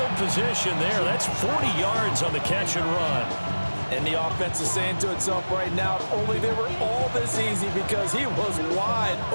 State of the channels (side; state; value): both; inverted; correlation -1.00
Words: position there. That's 40 yards on the catch and run. And the offense is saying to itself right now, only they were all this easy because he was wide